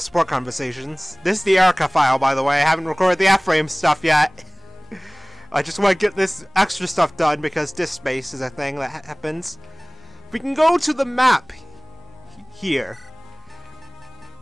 support conversations. This is the Erica file, by the way. I haven't recorded the F-frame stuff yet. I just want to get this extra stuff done because disk space is a thing that happens. We can go to the map here.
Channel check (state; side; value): noise; left; rumble, 30 dB below the sound